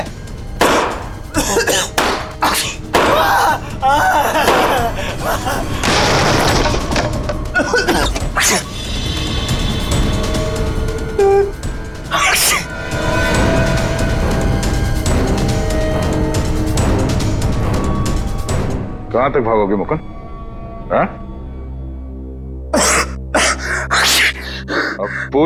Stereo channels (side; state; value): both; identical; correlation 1.00